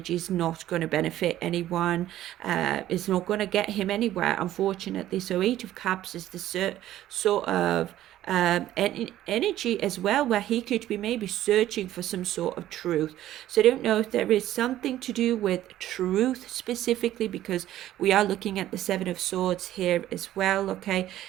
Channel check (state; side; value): quieter; left; 13.4 dB